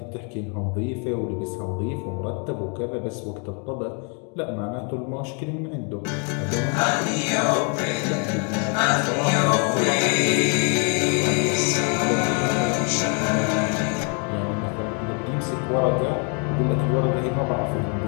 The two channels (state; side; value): quieter; right; 37.8 dB